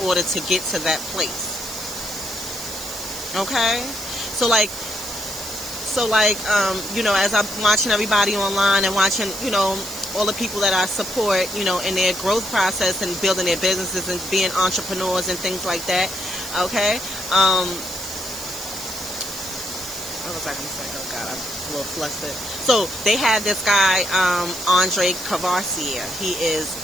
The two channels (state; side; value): noise; right; hiss, 10 dB below the sound